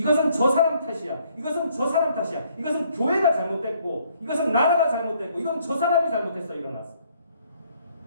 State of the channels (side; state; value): both; inverted; correlation -0.65